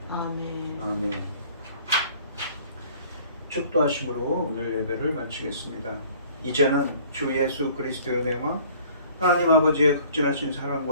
아멘. 아멘. 축도하심으로 오늘 예배를 마치겠습니다. 이제는 주 예수 그리스도의 은혜와 하나님 아버지의 극진하신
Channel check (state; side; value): inverted; both; correlation -0.53